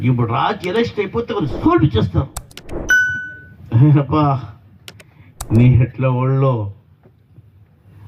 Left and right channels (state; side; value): identical; both; correlation 1.00